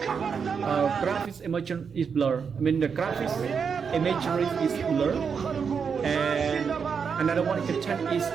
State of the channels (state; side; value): quieter; left; 6.2 dB